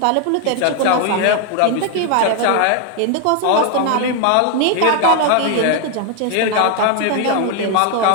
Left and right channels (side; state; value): both; different; correlation 0.00